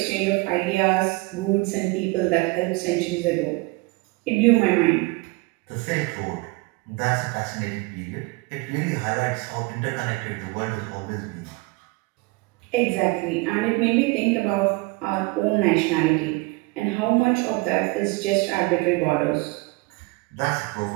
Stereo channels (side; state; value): left; quieter; 25.0 dB